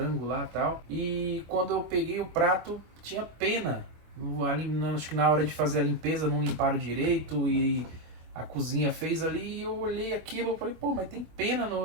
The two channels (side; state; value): left; late; 25 ms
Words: lá e tal. E quando eu peguei o prato, tinha pena. Acho que na hora de fazer a limpeza não limparam direito e a cozinha fez ali. E eu olhei aquilo e falei, pô, mas tem pena